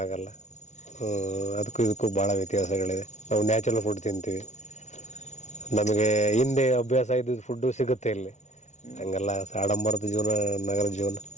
ಅದಕ್ಕೂ ಇದಕ್ಕೂ ಭಾಳ ವ್ಯತ್ಯಾಸಗಳಿದೆ. ನಾವು ನ್ಯಾಚುರಲ್ ಫುಡ್ ತಿಂತೀವಿ, ನಮಗೆ ಹಿಂದೆ ಅಭ್ಯಾಸ ಇದ್ದಿದ್ದು ಫುಡ್ಡು ಸಿಗುತ್ತೆ ಇಲ್ಲಿ. ಹಂಗಲ್ಲ ಆಡಂಬರದ ಜೀವನ, ನಗರದ ಜೀವನ.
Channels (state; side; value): late; right; 0.33 ms